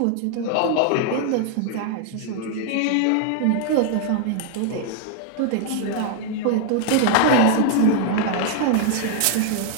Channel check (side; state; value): both; different; correlation 0.00